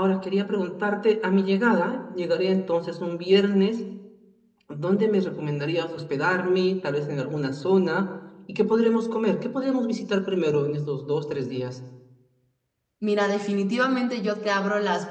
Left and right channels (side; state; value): both; identical; correlation 1.00